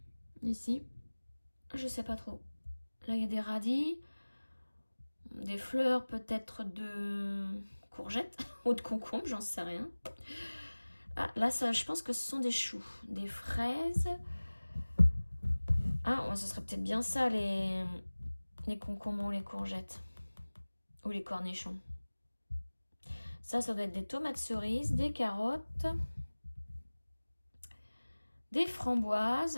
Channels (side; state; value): both; inverted; correlation -1.00